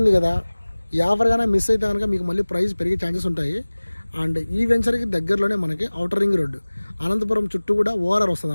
కదా, ఈ ఆఫర్ కానీ మిస్ అయితే కనుక మీకు మళ్ళీ ప్రైస్ పెరిగే ఛాన్సెస్ ఉంటాయి. అండ్ ఈ వెంచర్కి దగ్గరలోనే మనకి ఔటర్ రింగ్ రోడ్డు, అనంతపురం చుట్టూ కూడా ORR వస్తుంది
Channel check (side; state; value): both; inverted; correlation -1.00